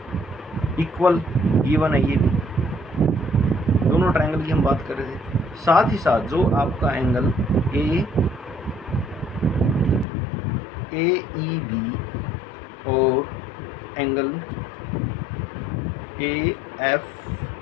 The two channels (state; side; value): drops out; right; at 10.1 s